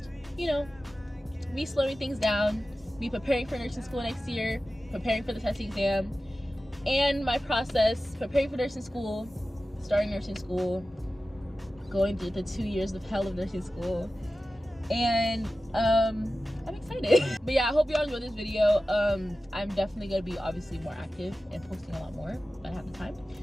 you know, me slowing things down, me preparing for nursing school next year, preparing for the testing exam, and my process, preparing for nursing school, starting nursing school, going through the 2 years of hell of nursing school, and I'm excited. But yeah, I hope y'all enjoyed this video. I'm definitely gonna be obviously more active and posting a lot more when I have the time.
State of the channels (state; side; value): normal; both; correlation 0.95